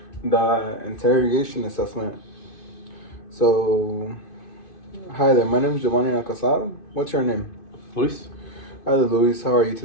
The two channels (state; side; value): late; right; 2.5 ms